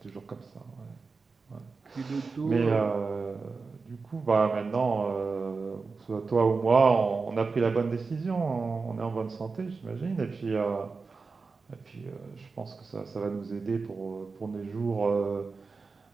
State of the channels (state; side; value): quieter; left; 4.4 dB